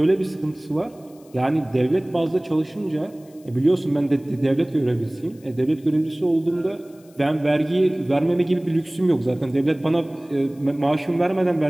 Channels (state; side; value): noise; left; hiss, 29 dB below the sound